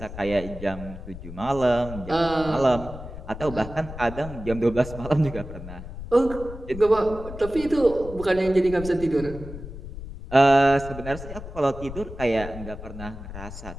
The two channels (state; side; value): noise; left; rumble, 11 dB below the sound